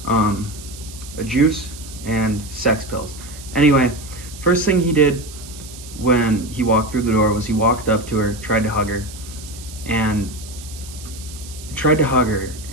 a juice, and sex pills. Anyway, first thing he did when he walked through the door was he walked up to her, tried to hug her, and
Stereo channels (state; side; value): noise; right; hiss, 16 dB below the sound